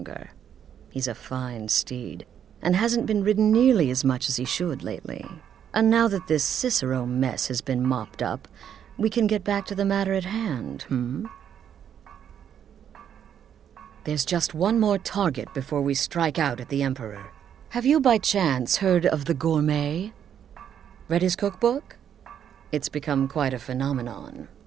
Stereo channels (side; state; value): left; quieter; 9.0 dB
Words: He's a fine steed, and hasn't been ridden nearly as much as he should lately. And now that this Cicero mess has been mopped up, we can get back to the matter at hand, There's just one more target before we strike out at the Emperor. Have you by chance heard of the Gourmet? Read his cookbook? It's become quite a phenomenon.